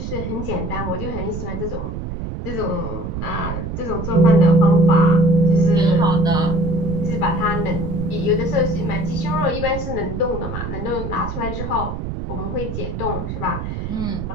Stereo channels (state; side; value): noise; right; rumble, 6 dB below the sound